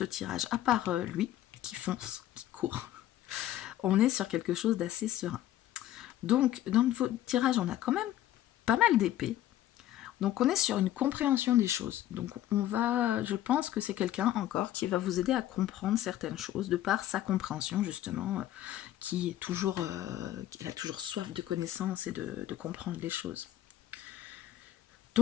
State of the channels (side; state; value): right; quieter; 13.2 dB